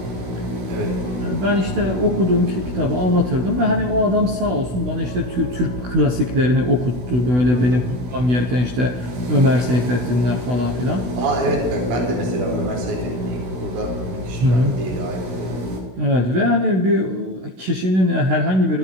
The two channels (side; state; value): left; late; 16 ms